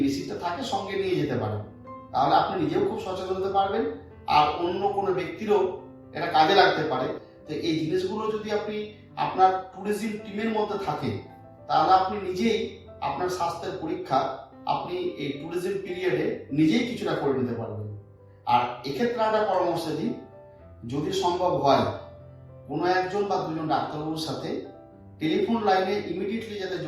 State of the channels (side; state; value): both; identical; correlation 1.00